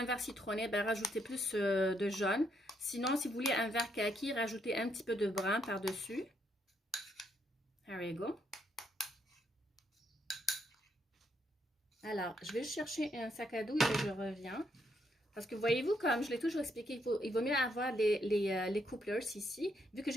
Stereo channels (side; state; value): both; normal; correlation 0.75